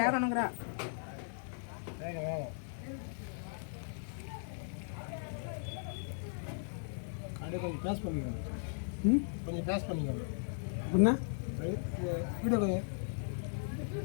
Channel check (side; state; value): right; silent; digital silence